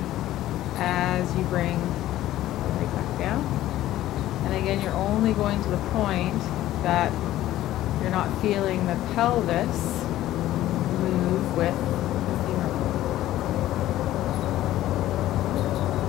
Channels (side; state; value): right; quieter; 14.2 dB